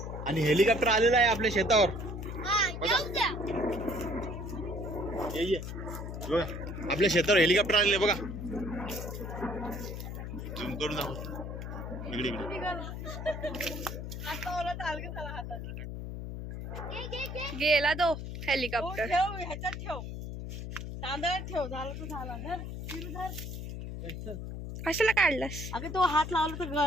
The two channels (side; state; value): left; noise; hum, 7 dB below the sound